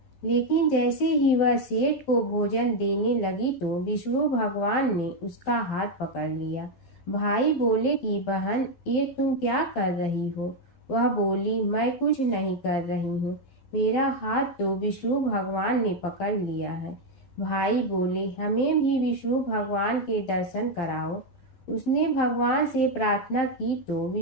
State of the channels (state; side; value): late; right; 12 ms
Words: लेकिन जैसे ही वह सेठ को भोजन देने लगी तो विष्णु भगवान ने उसका हाथ पकड़ लिया। भाई बोले कि बहन, ये तुम क्या कर रही हो? वह बोली, मैं कुछ नहीं कर रही हूँ, मेरा हाथ तो विष्णु भगवान ने पकड़ लिया है। भाई बोले, हमें भी विष्णु भगवान के दर्शन कराओ। उसने भगवान से प्रार्थना की तो